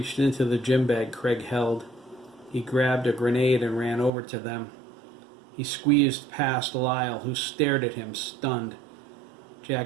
into the gym bag Craig held. He grabbed a grenade and ran over to them. He squeezed past Lyle, who stared at him, stunned.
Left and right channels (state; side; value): drops out; left; at 4.1 s